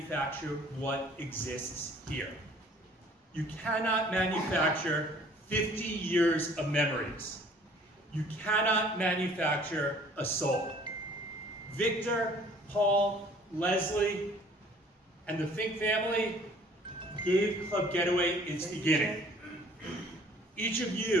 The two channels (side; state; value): both; normal; correlation 0.54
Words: what exists here. You cannot manufacture 50 years of memories. You cannot manufacture a soul. Victor, Paul, Leslie, and the Fink family gave Club Getaway its beginning. Each of